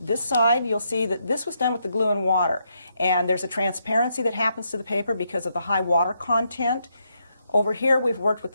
side, you'll see that this was done with the glue and water, and there's a transparency that happens to the paper because of the high water content. Over here, we've worked with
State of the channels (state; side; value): inverted; both; correlation -0.79